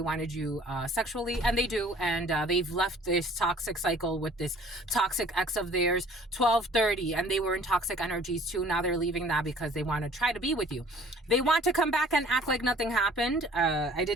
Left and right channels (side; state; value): both; normal; correlation 0.52